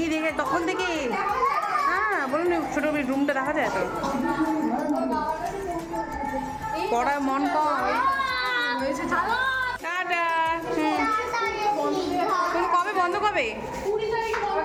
দেখে তখন থেকে। হ্যাঁ বলুন ছোটো রুমটা দেখা যায় তো। পড়ার মন কম হয়েছে টাটা। তুমি কবে বন্ধ কবে? 20 তারিখ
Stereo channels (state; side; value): identical; both; correlation 1.00